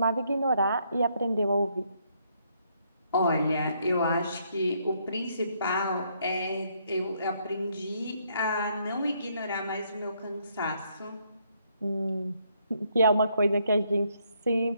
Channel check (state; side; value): inverted; both; correlation -0.72